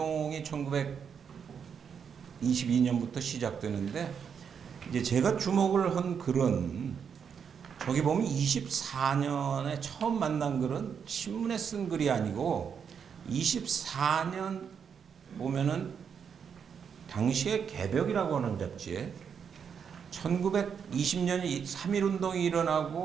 1922년부터 시작되는데 이제 제가 주목을 한 글은 저기 보면 24년에 처음 만난 글은 신문에 쓴 글이 아니고 24년 보면은 당시에 개벽이라고 하는 잡지에 1920년 3.1운동이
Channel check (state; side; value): quieter; left; 7.1 dB